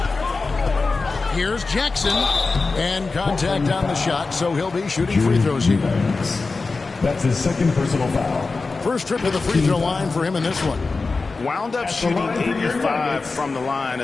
Here's Jackson, and contact on the shot, so he'll be shooting free throws here. That's his second personal foul. First trip to the free throw line for him in this one. Wound up shooting 85 from the line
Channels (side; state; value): right; quieter; 4.0 dB